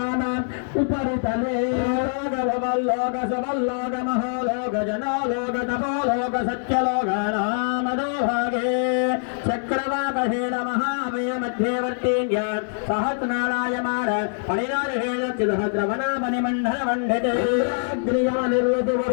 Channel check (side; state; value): right; silent; digital silence